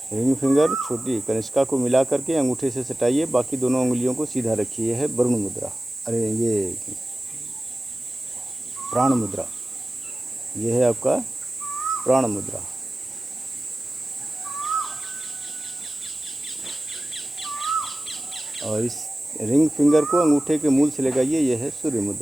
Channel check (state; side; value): normal; both; correlation 0.96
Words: रिंग फिंगर छोटी कनिष्का को मिला करके अंगूठे से सटाइए, बाकी दोनों अंगुलियों को सीधा रखिए। यह है वरुण मुद्रा, अरे ये प्राण मुद्रा। यह है आपका प्राण मुद्रा। और इस रिंग फिंगर को अंगूठे के मूल से लगाइए, यह है सूर्य